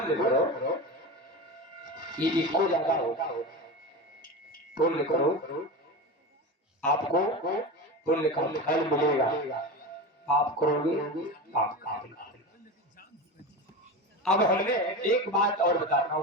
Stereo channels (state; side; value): normal; both; correlation 0.25